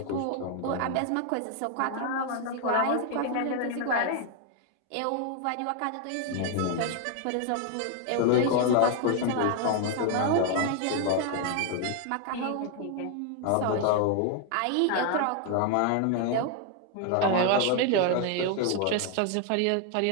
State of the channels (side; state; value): both; different; correlation 0.00